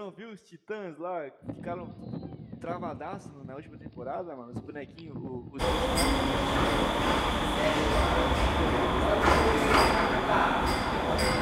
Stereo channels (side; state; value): both; identical; correlation 1.00